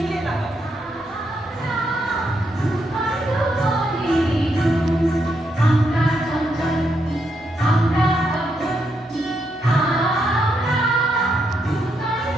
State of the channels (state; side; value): normal; both; correlation 0.79